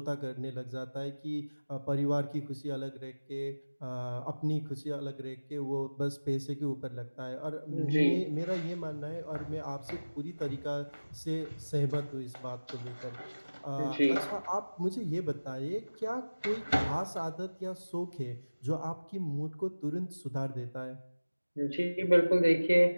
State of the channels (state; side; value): inverted; both; correlation -1.00